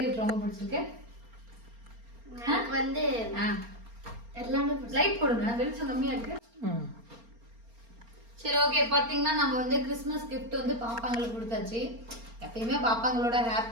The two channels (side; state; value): left; late; 4.3 ms